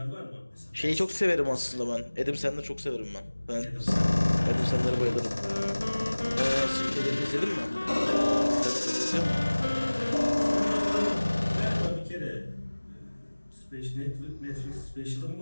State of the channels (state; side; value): inverted; both; correlation -1.00